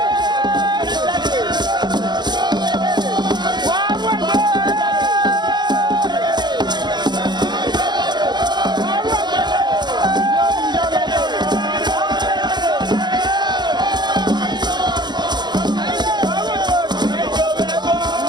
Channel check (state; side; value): late; left; 0.21 ms